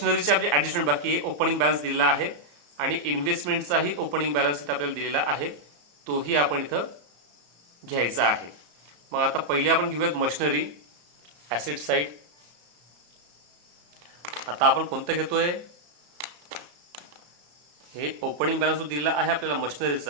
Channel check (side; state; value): left; late; 34 ms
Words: आपली ॲडजस्टमेंट बाकी आहे. ओपनिंग बॅलन्स दिलेला आहे आणि इन्व्हेस्टमेंटचाही ओपनिंग बॅलन्स इथं आपल्याला दिलेला आहे, तोही आपण इथं घ्यायचा आहे. मग आता पहिले आपण घेऊयात मशिनरी ॲसेट साईड. आता आपण कोणतं घेतोय, हे ओपनिंग बॅलन्स दिलेला आहे आपल्याला